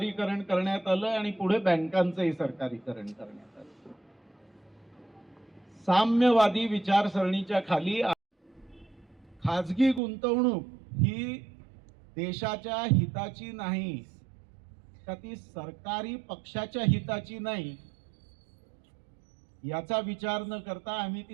करण्यात आलं आणि पुढे बँकांचंही सरकारीकरण करण्यात आलं. साम्यवादी विचारसरणीच्या खाली खाजगी गुंतवणूक ही देशाच्या हिताची नाही का, ती सरकारी पक्षाच्या हिताची नाही, याचा विचार न करता आम्ही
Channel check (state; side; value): drops out; left; at 10.0 s